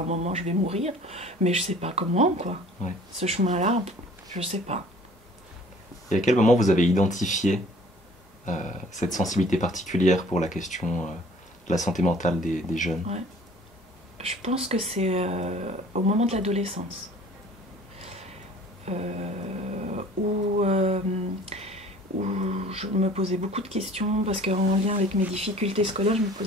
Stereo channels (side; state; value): both; normal; correlation 0.51